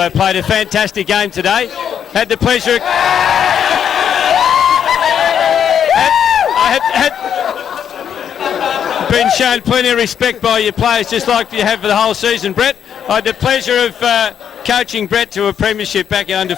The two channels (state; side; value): quieter; right; 8.6 dB